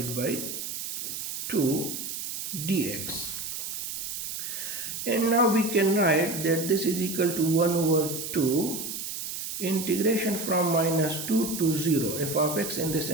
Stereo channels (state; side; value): noise; right; hiss, 5 dB below the sound